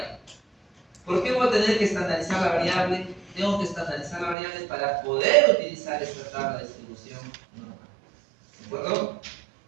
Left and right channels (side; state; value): left; drops out; at 4.4 s